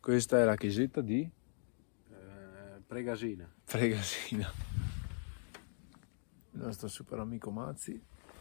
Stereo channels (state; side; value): silent; right; 51 dB below the other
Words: è la chiesetta di Pregasina. Fregasina. Il nostro super amico Mazzi.